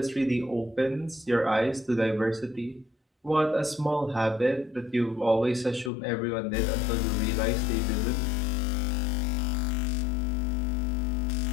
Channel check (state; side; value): drops out; right; at 5.9 s